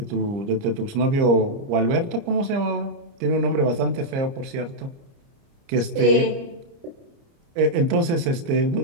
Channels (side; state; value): left; late; 29 ms